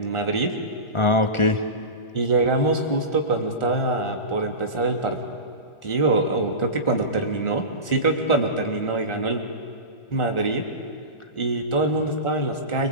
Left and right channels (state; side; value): late; right; 1.4 ms